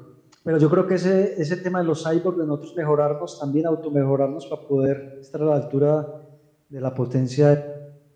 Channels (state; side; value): identical; both; correlation 1.00